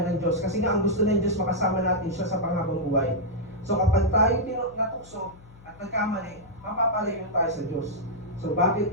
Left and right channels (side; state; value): left; noise; hum, 23 dB below the sound